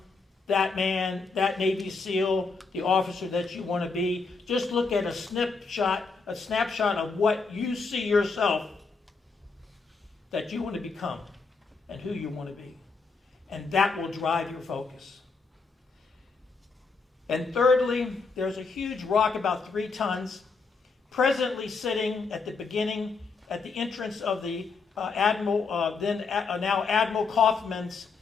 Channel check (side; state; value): right; quieter; 4.5 dB